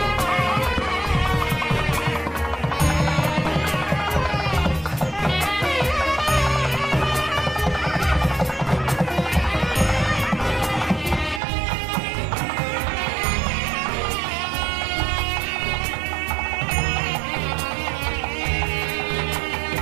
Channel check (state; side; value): drops out; left; at 11.4 s